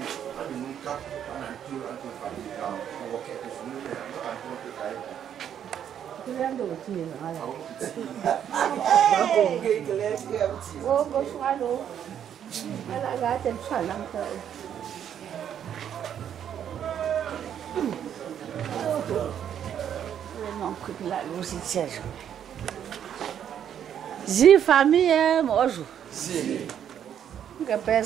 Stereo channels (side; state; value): left; quieter; 9.3 dB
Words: tu ciri mana? Oh, kau suka lo. Anak gajah salam tu. Memang kuat lu si ceri. Zi famille moi je. Cái bé